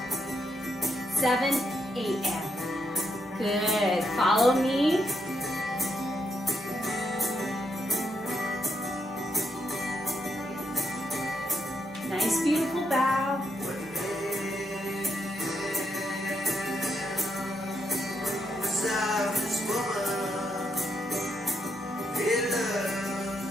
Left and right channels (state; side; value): normal; both; correlation 0.80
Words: 7, 8, and good. Follow me. Nice, beautiful bow.